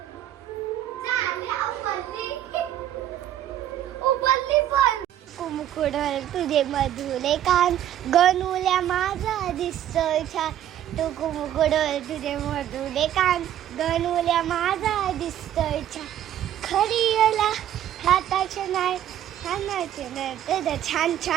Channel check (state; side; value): quieter; left; 11.4 dB